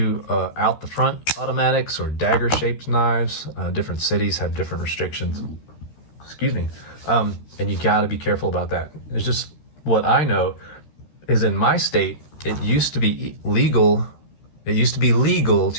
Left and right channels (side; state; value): right; late; 13 ms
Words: out the front automatics or dagger shaped knives. Different cities have different restrictions. Excuse me. And you got to be careful about that. It's just what I know. is in my state, it used to be legal. It used to be legal